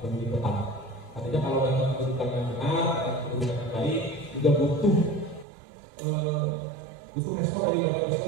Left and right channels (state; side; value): drops out; left; at 5.5 s